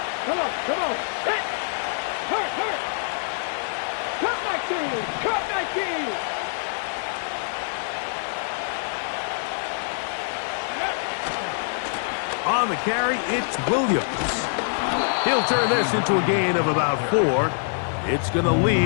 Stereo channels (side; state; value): right; silent; digital silence